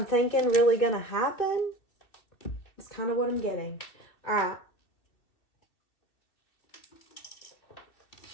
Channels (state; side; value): late; right; 2.8 ms